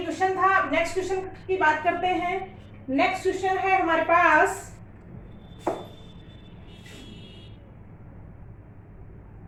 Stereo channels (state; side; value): identical; both; correlation 1.00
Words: क्वेश्चन था। अब नेक्स्ट क्वेश्चन की बात करते हैं। नेक्स्ट क्वेश्चन है हमारे पास